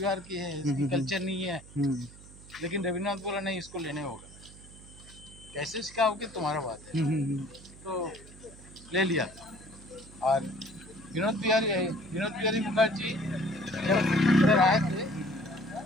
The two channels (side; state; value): right; noise; hum, 19 dB below the sound